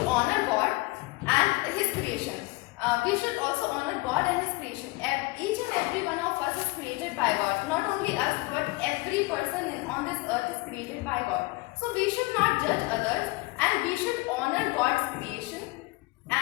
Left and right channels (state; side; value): quieter; right; 23.5 dB